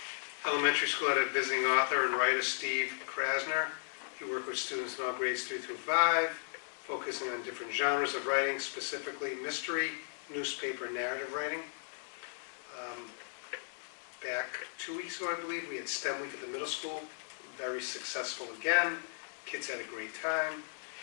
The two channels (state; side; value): silent; right; digital silence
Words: Elementary school had a visiting author and writer, Steve Krasner. He worked with students in all grades 3 through 5, focusing on different genres of writing, specifically mystery, newspaper, and narrative writing. Back 2 weeks ago, I believe, we had STEM week at the middle school. Very successful again. Kids had a great time.